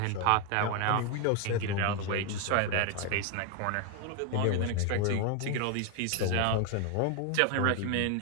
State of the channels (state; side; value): different; both; correlation 0.01